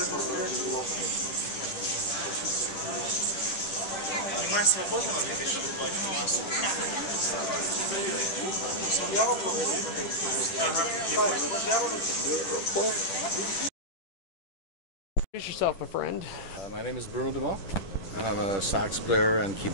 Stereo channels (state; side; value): late; right; 10 ms